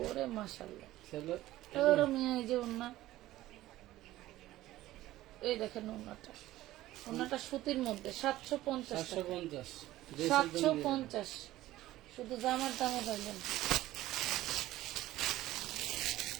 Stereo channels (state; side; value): quieter; left; 15.7 dB